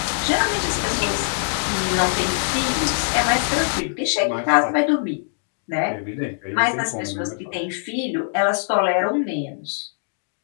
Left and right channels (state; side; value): silent; right; digital silence